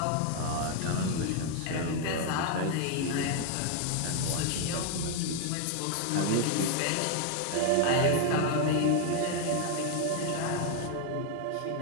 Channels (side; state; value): both; different; correlation 0.00